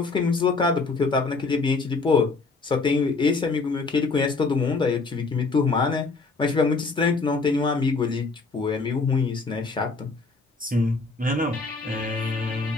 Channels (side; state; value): right; quieter; 3.9 dB